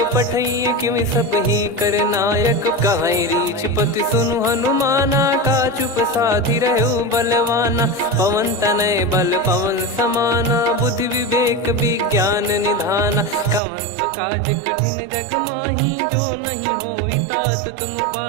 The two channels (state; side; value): drops out; left; at 13.6 s